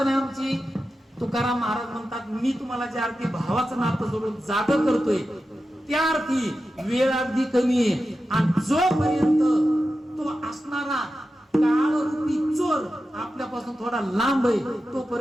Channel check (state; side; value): normal; both; correlation 0.92